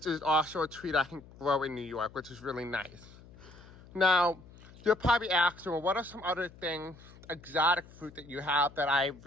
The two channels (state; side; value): noise; left; hum, 21 dB below the sound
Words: is also a tree that I can grow in New York, which is really nice. Now, you're probably asking, well, what are some other things, exotic fruit that you have that I